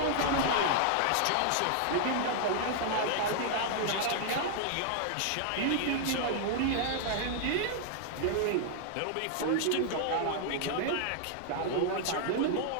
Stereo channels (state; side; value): different; both; correlation -0.01